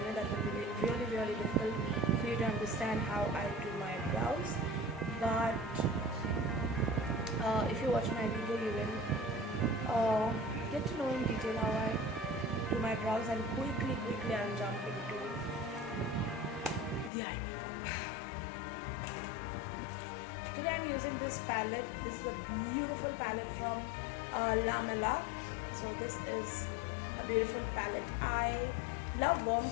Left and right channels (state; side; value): drops out; right; at 17.1 s